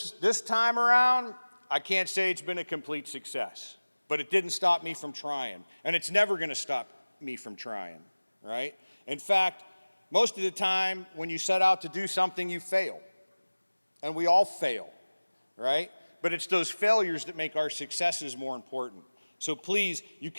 time around, I can't say it's been a complete success, but it didn't stop me from trying, and it's never going to stop me from trying, right? In fact, most of the time when you set out to do something, you fail. And we all fail, right? But it's those failures that make our successes more important. So please, you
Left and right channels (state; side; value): inverted; both; correlation -1.00